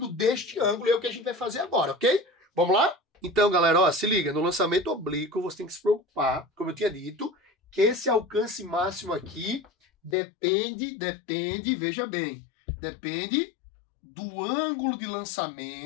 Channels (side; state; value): right; drops out; at 10.2 s